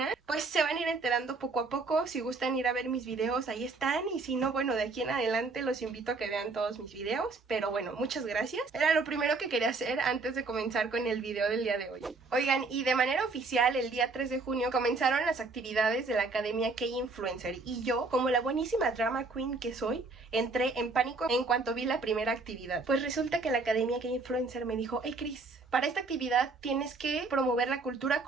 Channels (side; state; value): left; quieter; 3.8 dB